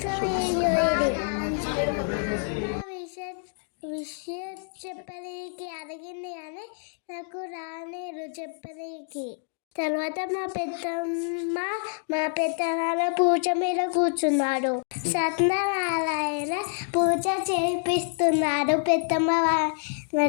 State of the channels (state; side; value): silent; right; digital silence